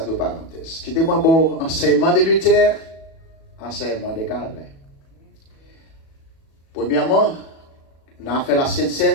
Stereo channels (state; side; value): late; right; 37 ms